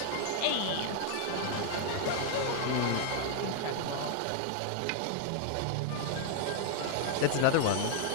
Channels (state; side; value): different; both; correlation 0.00